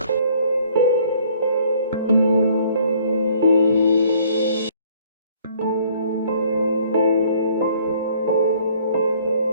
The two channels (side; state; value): both; inverted; correlation -0.60